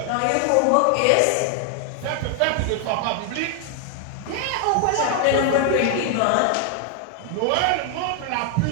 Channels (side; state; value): both; different; correlation 0.00